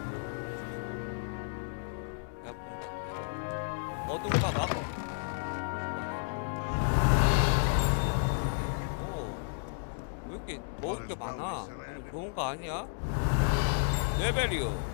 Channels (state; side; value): silent; right; digital silence